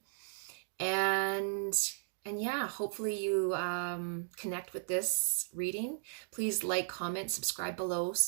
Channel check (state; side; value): silent; left; digital silence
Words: And yeah, hopefully you connect with this reading. Please like, comment, subscribe below,